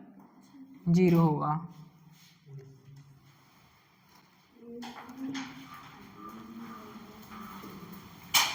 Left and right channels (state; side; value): identical; both; correlation 1.00